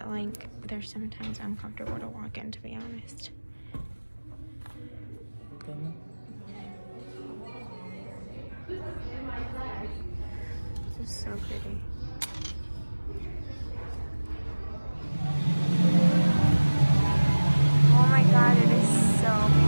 like they're sometimes uncomfortable to walk in, to be honest. This is so pretty.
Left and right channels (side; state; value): both; inverted; correlation -1.00